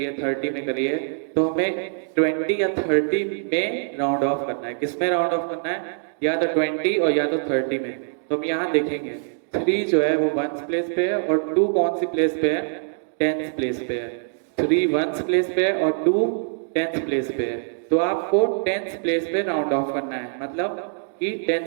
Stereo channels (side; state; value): left; silent; digital silence